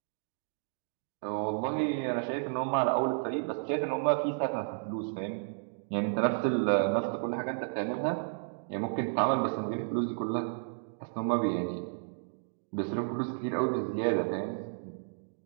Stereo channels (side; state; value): left; silent; digital silence